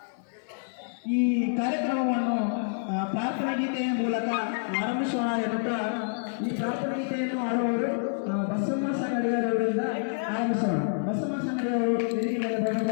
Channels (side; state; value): right; silent; digital silence